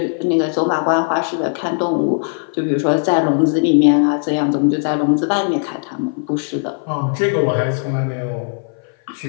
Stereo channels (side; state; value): right; silent; 56 dB below the other